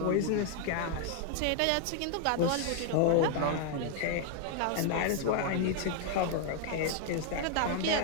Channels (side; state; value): both; different; correlation 0.00